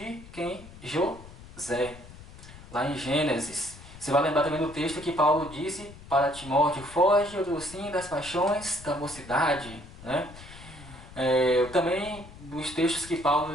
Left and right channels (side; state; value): left; noise; rumble, 17 dB below the sound